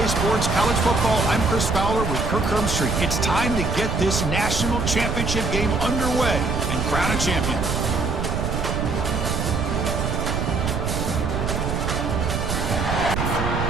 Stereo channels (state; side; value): noise; right; rumble, 1 dB below the sound